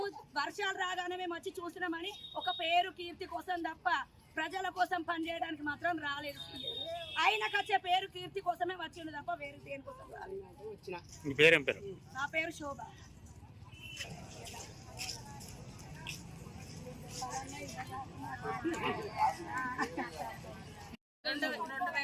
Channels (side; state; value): both; identical; correlation 1.00